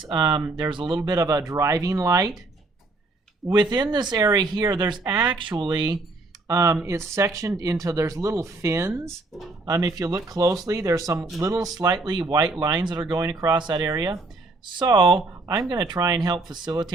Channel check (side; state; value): left; quieter; 3.2 dB